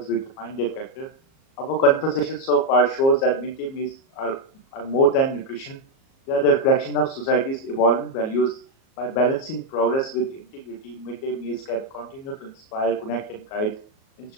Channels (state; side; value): late; right; 37 ms